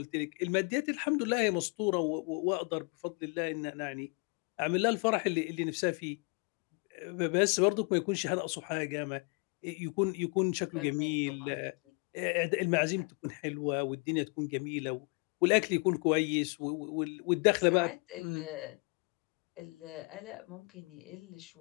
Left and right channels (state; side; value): quieter; right; 33.5 dB